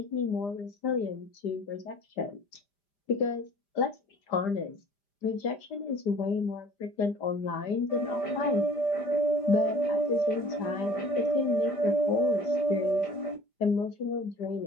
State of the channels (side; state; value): right; late; 5.0 ms